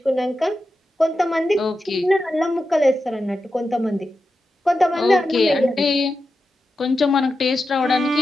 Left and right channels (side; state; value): both; normal; correlation 0.90